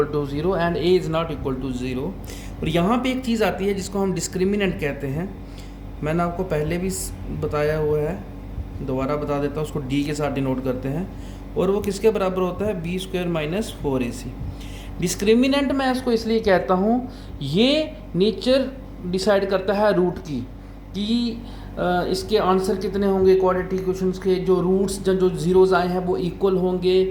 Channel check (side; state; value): both; identical; correlation 1.00